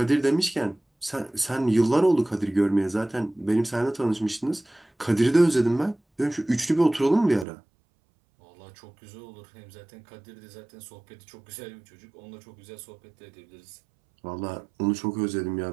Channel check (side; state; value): left; drops out; at 7.5 s